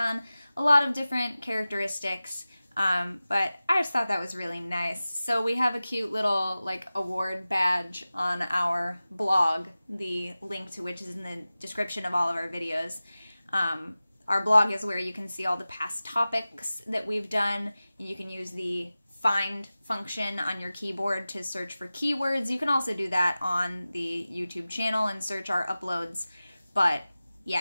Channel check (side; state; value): both; inverted; correlation -0.96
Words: a lot of different characteristics, but I just thought that was really nice. So we have a cute little like award badge on our blog, the link to which is in the description of all of our videos. Our blog is where you can see all the past topics that we've done. You can use the find function on your keyboard to search for keywords. You can also do that on the YouTube channel and search our uploads, but